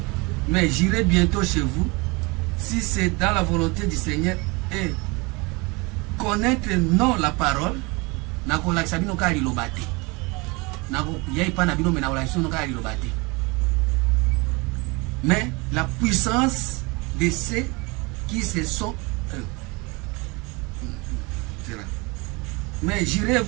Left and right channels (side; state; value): left; quieter; 26.6 dB